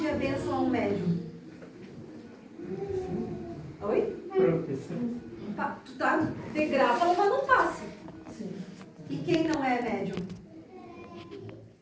a bênção a um médium? Oi? Proteção. Tu tá de graça levando um passe. E quem não é médium?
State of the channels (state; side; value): identical; both; correlation 1.00